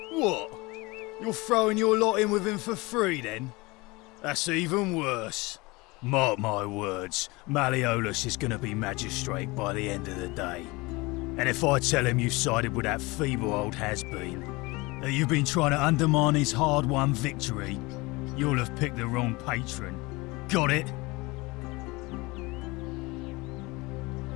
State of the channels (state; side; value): quieter; right; 23.8 dB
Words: What? You're throwing your lot in with him for free then? That's even worse. Mark my words, Malleolus is going to be magistrate by the end of the day. And if I tell him you've sided with that feeble old has-been, that you've been trying to undermine his hard-won victory, you'll have picked the wrong patron. Got it?